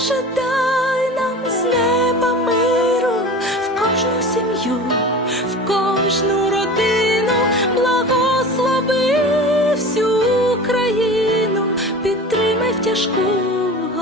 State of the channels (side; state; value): both; normal; correlation 0.36